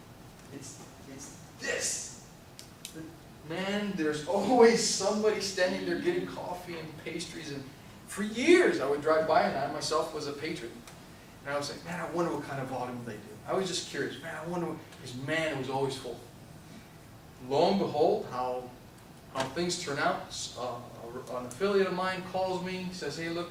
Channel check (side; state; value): both; identical; correlation 1.00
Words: this. Man, there's always somebody standing there getting coffee and pastries, and for years I would drive by, and I myself was a patron. And I was like, man, I wonder what kind of volume they do. I was just curious, man, I wonder what, because man, it was always full. Lo and behold, how things turn out. An affiliate of mine calls me, says, hey